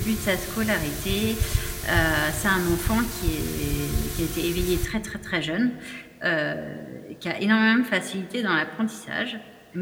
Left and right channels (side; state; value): both; identical; correlation 1.00